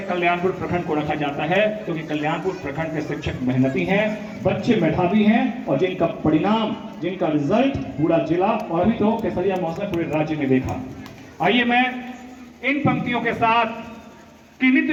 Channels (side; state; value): both; identical; correlation 1.00